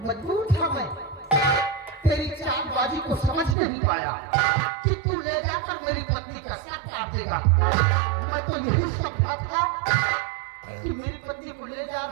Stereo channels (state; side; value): drops out; left; at 3.6 s